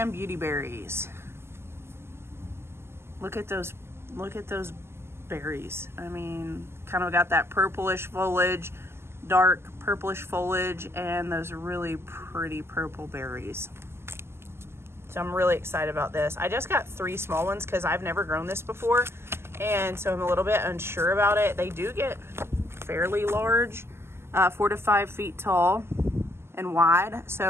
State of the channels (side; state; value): left; late; 0.12 ms